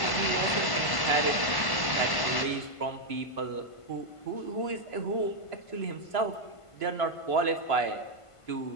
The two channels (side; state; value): right; late; 1.1 ms